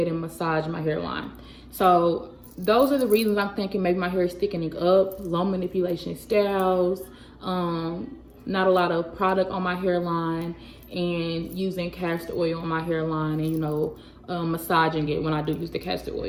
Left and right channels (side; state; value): both; identical; correlation 1.00